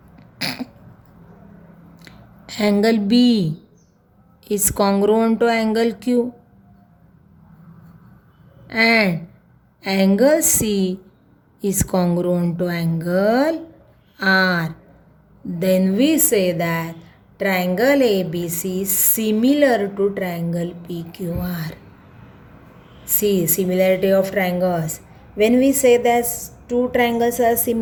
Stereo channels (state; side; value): identical; both; correlation 1.00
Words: angle B is congruent to angle Q, and angle C is congruent to angle R. Then we say that triangle ABC is similar to triangle PQR. See, similarity of triangles. When we say that two triangles are